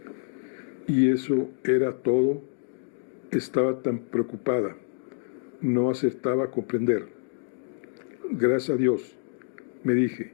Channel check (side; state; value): right; silent; digital silence